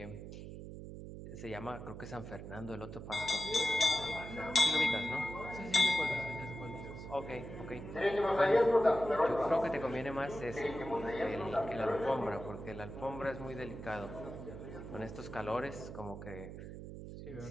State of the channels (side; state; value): right; noise; hum, 10 dB below the sound